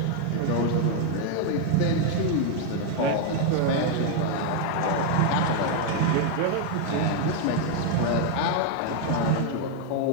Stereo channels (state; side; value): different; both; correlation 0.00